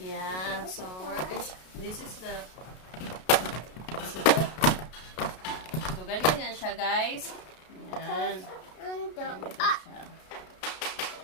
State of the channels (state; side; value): late; right; 32 ms